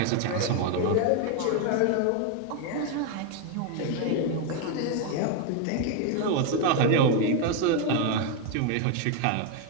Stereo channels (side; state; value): both; different; correlation 0.01